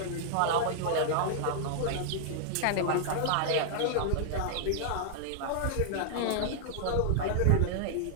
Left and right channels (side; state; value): both; different; correlation -0.01